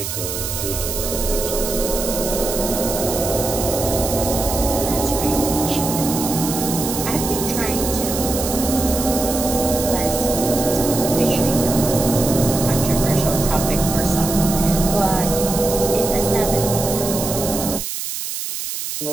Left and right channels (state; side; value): noise; right; hiss, 5 dB below the sound